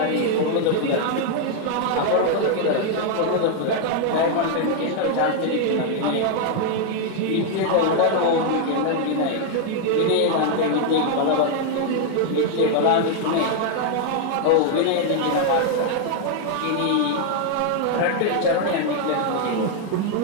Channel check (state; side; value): different; both; correlation 0.00